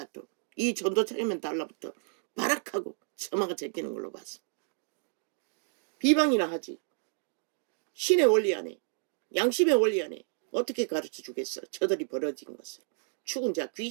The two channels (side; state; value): left; silent; 57 dB below the other